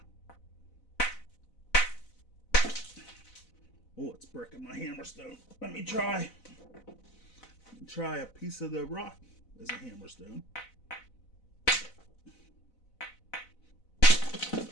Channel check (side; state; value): right; late; 4.0 ms